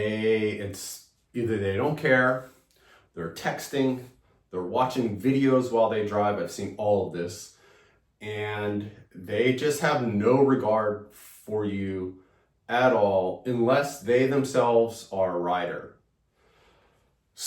either they don't care, they're texting, they're watching videos while they drive. I've seen all of this, and they just have no regard for you at all unless they themselves are a rider.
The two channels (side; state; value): both; identical; correlation 1.00